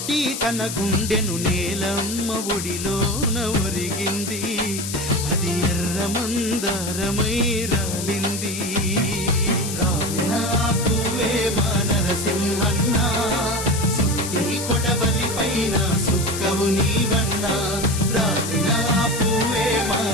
తన గుండెను నేలమ్మ ఒడిలోన ఒరిగింది. అది ఎర్ర మందారమై రాలింది. రాలిన పువ్వే మా నరసింహన్న, సుత్తి కొడవలి పైన సుక్కవు నీవన్నా. రాలిన పువ్వే మా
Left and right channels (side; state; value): left; noise; hiss, 6 dB below the sound